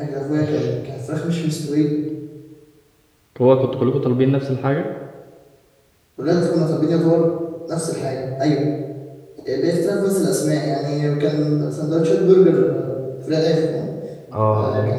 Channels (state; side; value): identical; both; correlation 1.00